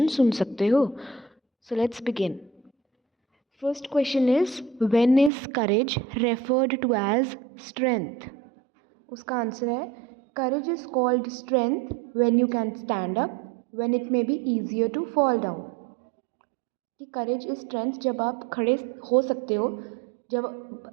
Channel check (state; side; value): drops out; left; at 5.3 s